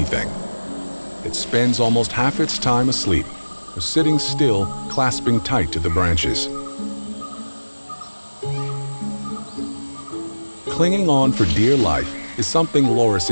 It spends almost half its time asleep, or sitting still, clasping tight to the branches. Clinging on for dear life is something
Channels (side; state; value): both; inverted; correlation -1.00